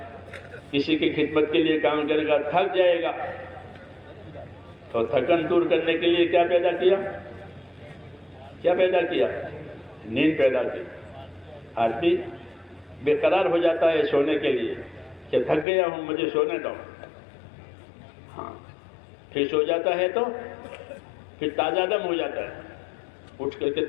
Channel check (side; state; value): right; drops out; at 15.7 s